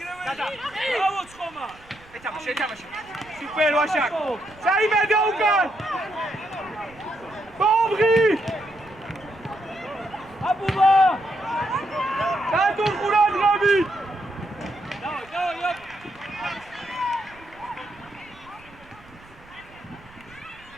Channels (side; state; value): right; noise; rumble, 24 dB below the sound